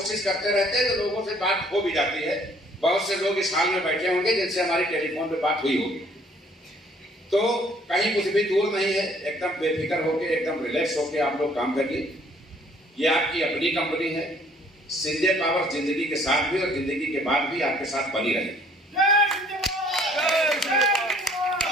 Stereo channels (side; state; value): both; normal; correlation 0.59